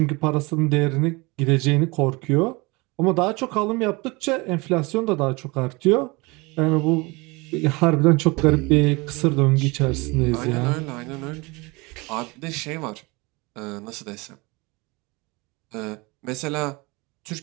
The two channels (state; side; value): quieter; left; 25.4 dB